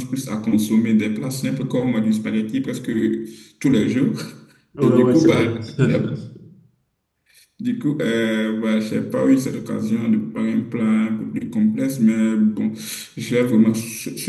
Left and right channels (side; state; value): both; identical; correlation 1.00